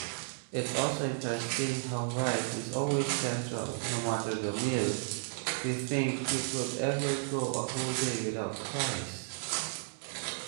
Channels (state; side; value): silent; left; digital silence